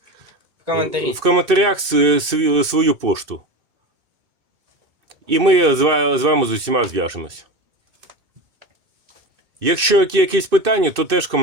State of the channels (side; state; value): left; late; 2.6 ms